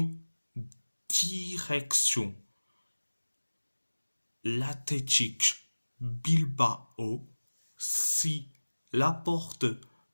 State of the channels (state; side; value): inverted; both; correlation -1.00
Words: Direction l'Athletic Bilbao. Si Laporte